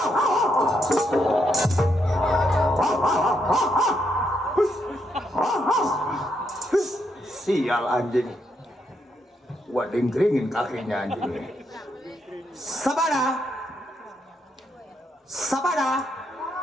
Sial anjing. Gua dengkringin kakinya anjing. Sabada. Sabada.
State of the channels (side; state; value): both; normal; correlation 0.78